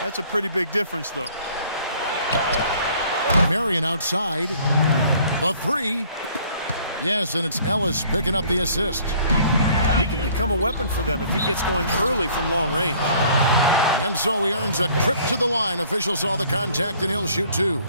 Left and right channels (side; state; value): both; inverted; correlation -0.57